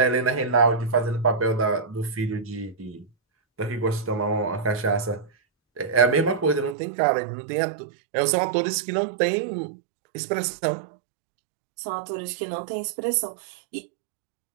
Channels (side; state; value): left; drops out; at 6.8 s